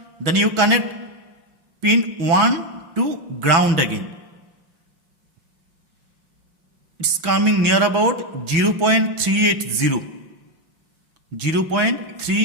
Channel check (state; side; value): late; left; 6.1 ms